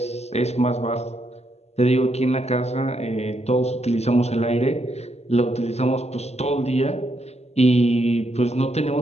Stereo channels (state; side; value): late; right; 0.31 ms